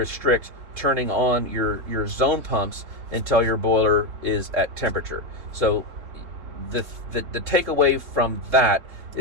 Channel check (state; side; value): late; left; 3.6 ms